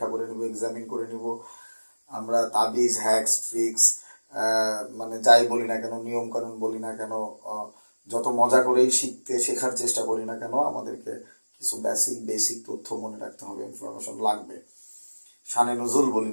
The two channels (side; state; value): both; inverted; correlation -1.00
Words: করে নিব, এক্সামিন করে নিব। আমরা তাবিজ, হ্যাক্স, ট্রিক্স মানে যাই বলি না কেন, নিয়ম কানুন বলি না কেন, যত মজা করেই শেখার চেষ্টা করি না কেন, আমাদেরকে কিছু বেসিক তথ্য মনে রাখতে হবে, ইনফরমেশন লাগবে। শানে নজুল বলি